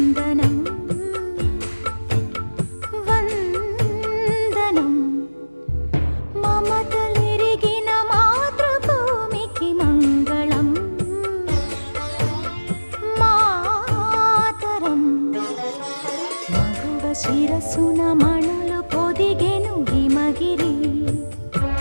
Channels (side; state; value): both; inverted; correlation -1.00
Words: vandanam. Mamatalirigina matruభూమికి మంగళం, మాతరం. మగువ శిరసున మణులు పొదిగెను హిమగిరి,